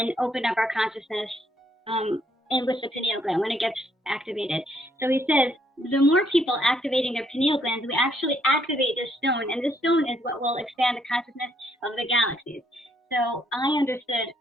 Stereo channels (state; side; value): normal; both; correlation 0.70